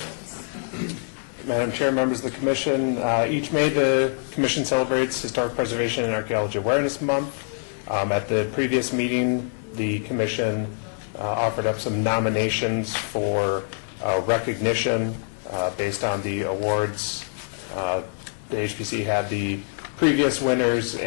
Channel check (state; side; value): silent; right; 62 dB below the other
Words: Madam Chair, members of the commission, each May the commission celebrates Historic Preservation and Archaeology Awareness Month. At the previous meeting, the commission offered up some nominations for recognition based on the awards. The HPC had the previous winners